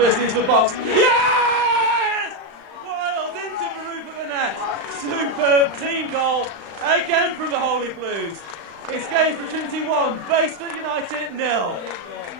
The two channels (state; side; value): late; left; 35 ms